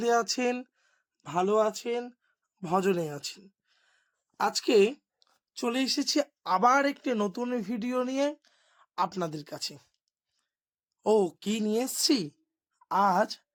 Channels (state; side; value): identical; both; correlation 1.00